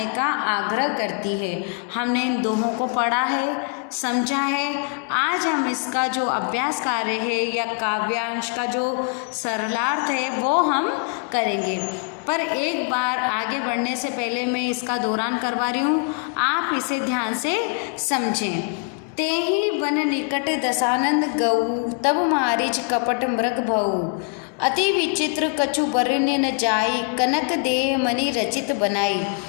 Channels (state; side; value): quieter; right; 37.7 dB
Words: का आग्रह करती है। हमने इन दोहों को पढ़ा है, समझा है। आज हम इसका जो अभ्यास कार्य है या काव्यांश का जो सरलार्थ है वो हम करेंगे। पर एक बार आगे बढ़ने से पहले मैं इसका दोहरान करवा रही हूँ, आप इसे ध्यान से समझें। तेहि वन निकट दसानंद गऊ, तब मारीच कपट मृग भऊ। अति विचित्र कछु वर्ण्य न जाई, कनक देह मणि रचित बनाई।